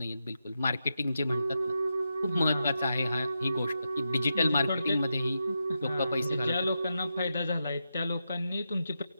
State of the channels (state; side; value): inverted; both; correlation -0.87